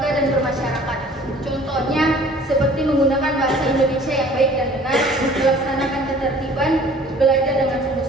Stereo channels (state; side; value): normal; both; correlation 0.51